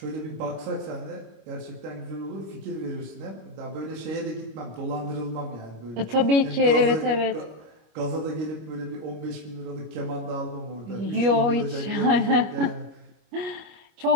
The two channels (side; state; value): left; late; 25 ms